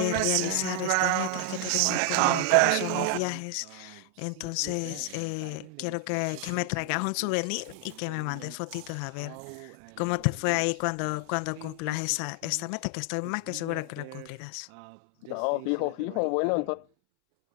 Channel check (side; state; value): both; different; correlation 0.00